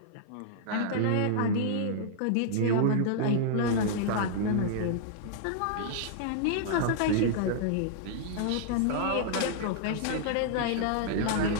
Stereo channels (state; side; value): different; both; correlation -0.01